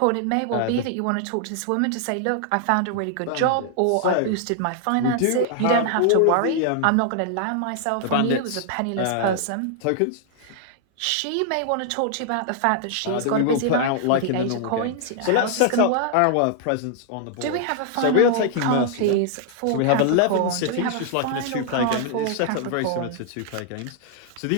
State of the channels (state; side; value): different; both; correlation -0.01